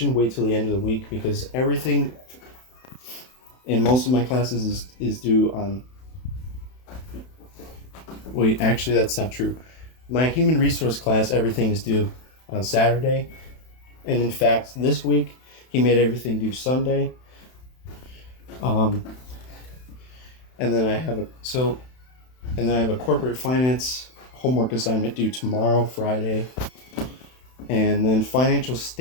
wait till the end of the week, because everything in most of my classes is due on. Wait, actually, that's not true. My human resource class, everything is due on Saturday. And in fact, this week, he made everything due Sunday. And then I have a corporate finance homework assignment due tomorrow, Friday. And then financial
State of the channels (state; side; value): late; right; 31 ms